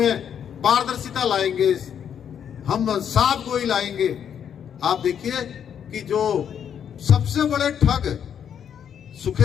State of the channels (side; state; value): right; quieter; 8.5 dB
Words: पारदर्शिता लाएंगे, हम साफ गोई लाएंगे। आप देखिए कि जो सबसे बड़े ठग